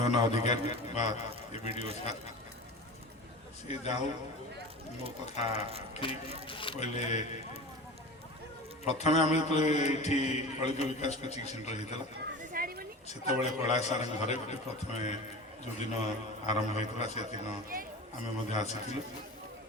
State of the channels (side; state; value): both; normal; correlation 0.33